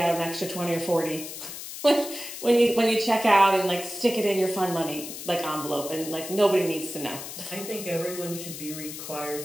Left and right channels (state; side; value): noise; left; hiss, 10 dB below the sound